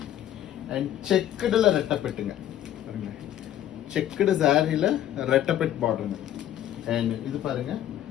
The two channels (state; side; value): quieter; right; 11.7 dB